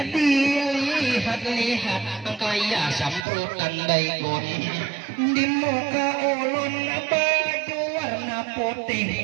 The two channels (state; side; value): drops out; left; at 3.2 s